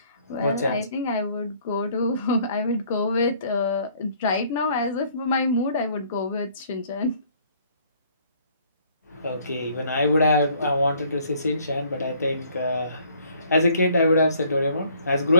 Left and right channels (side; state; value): both; inverted; correlation -0.60